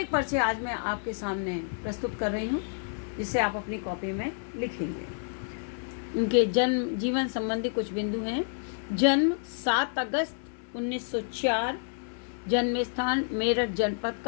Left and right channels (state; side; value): silent; right; 58 dB below the other